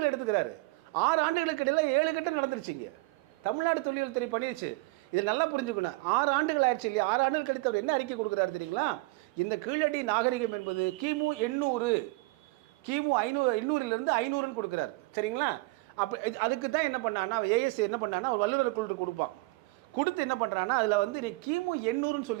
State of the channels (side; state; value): left; quieter; 24.2 dB